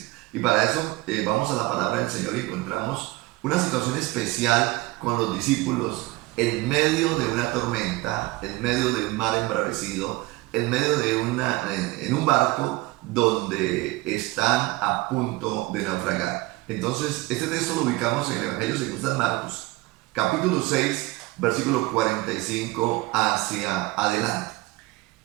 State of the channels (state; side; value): quieter; left; 20.6 dB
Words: Y para eso vamos a la palabra del Señor y encontramos una situación especial con los discípulos en medio de una tormenta, en medio de un mar embravecido, en medio de en un barco donde están a punto de naufragar. Entonces, este texto lo ubicamos en el Evangelio según San Marcos, capítulo 6, versículo 45 hacia adelante.